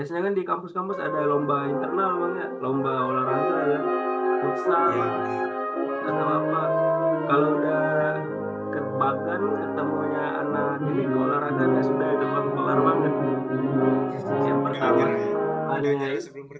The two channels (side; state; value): both; identical; correlation 1.00